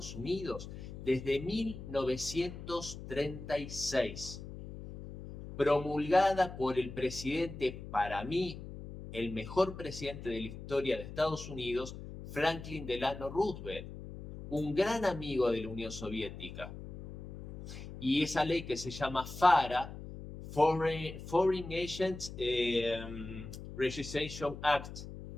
Unidos desde 1936, promulgada por el presidente, para mí, el mejor presidente de la historia de Estados Unidos, Franklin Delano Roosevelt. un gran amigo de la Unión Soviética. Y esa ley que se llama FARA, Foreign Agents Registration Act,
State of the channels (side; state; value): left; noise; hum, 11 dB below the sound